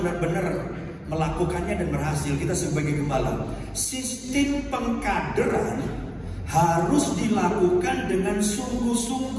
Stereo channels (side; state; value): both; identical; correlation 1.00